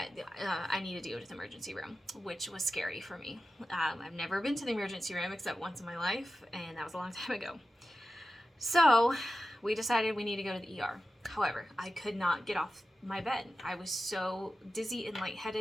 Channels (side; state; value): both; normal; correlation 0.93